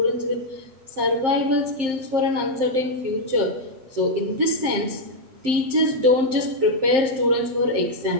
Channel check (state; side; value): late; left; 7.6 ms